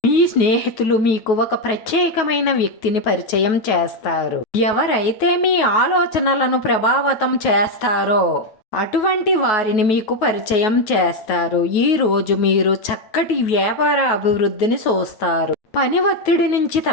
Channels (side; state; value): right; late; 9.3 ms